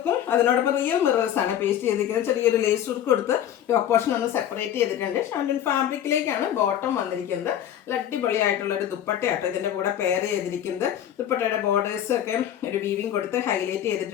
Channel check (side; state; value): right; quieter; 10.7 dB